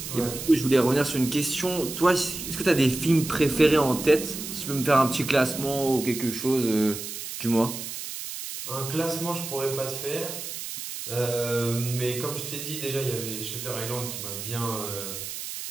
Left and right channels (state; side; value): noise; right; hiss, 8 dB below the sound